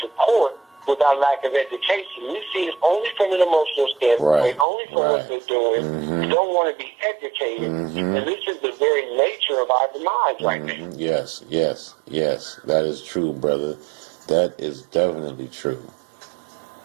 court with our lack of education. We see it only from an emotional standpoint, only from what they're doing. We don't want to be educated, and this is the very nature of our demise right now. Yes. That is true, brother. That is definitely true.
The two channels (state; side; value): drops out; left; at 4.7 s